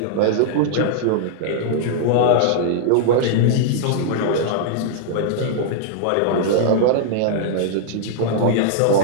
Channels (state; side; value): different; both; correlation -0.01